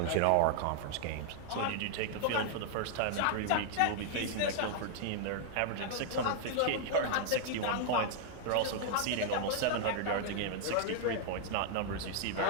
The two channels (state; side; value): different; both; correlation -0.01